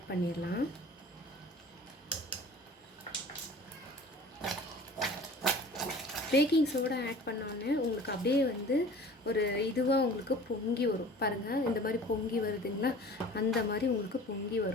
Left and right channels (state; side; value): normal; both; correlation 0.44